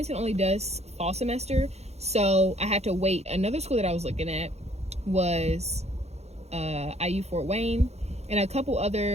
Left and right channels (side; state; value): left; late; 0.31 ms